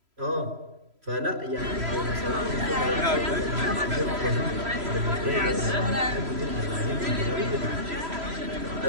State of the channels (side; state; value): left; late; 3.0 ms